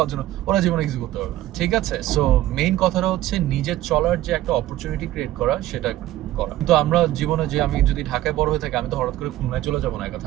জন্য, ওরা জীবনে কিছু করতে পারবে না, ঠিক আছে? সো মেইন কথাটা হচ্ছে নিজের চলার যে একটা অপরচুনিটি ক্রিয়েট করা, সেটা করা। কিন্তু আমরা জীবনে যে আমি যদি ঢাকায় বড় হয়ে থাকি, আমি তো হঠাৎ করে খুলনায় চলে যাবো না একা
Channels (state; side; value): quieter; left; 14.8 dB